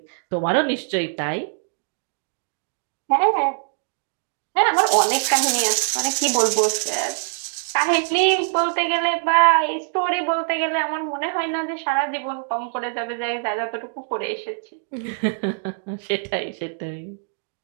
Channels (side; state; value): left; silent; digital silence